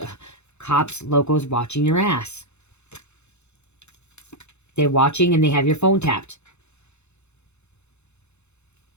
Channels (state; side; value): late; right; 0.81 ms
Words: Cops, locals watching your ass. They're watching and they have your phone tapped.